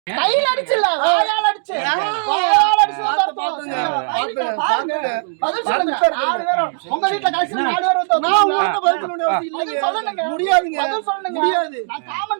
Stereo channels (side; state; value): left; silent; digital silence